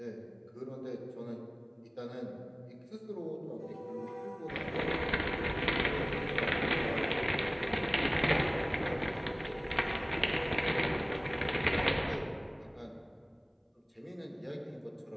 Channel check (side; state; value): both; identical; correlation 1.00